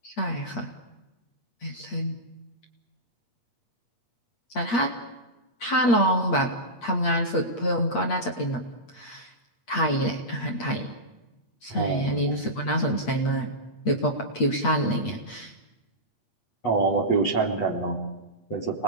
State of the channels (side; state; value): right; late; 8.5 ms